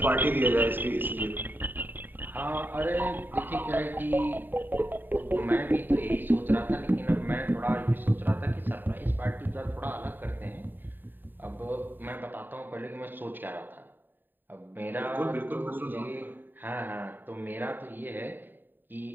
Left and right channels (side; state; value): left; late; 0.092 ms